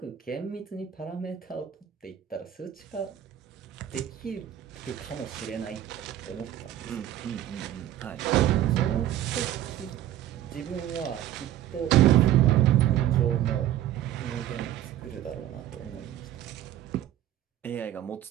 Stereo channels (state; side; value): quieter; left; 12.0 dB